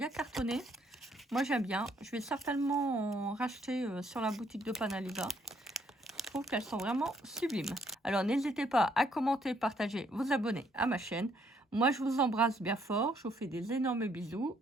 cartonnées. Moi, j'aime bien. Je vais certainement en racheter sur la boutique de Panaliva. Je trouve qu'elles sont vraiment sublimes. Alors, n'hésitez pas à commenter, partager, vous abonner à ma chaîne. Moi, je vous embrasse bien fort. Je vous fais des énormes bisous.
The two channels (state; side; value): normal; both; correlation 0.69